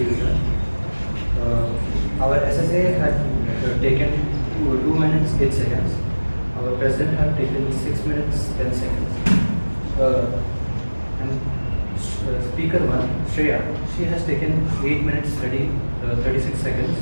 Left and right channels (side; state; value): both; inverted; correlation -1.00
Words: our SSA had taken 2 minutes 8 seconds. Our president had taken 6 minutes 10 seconds. And speaker 1, Shreya, she has taken 8 minutes 36 seconds.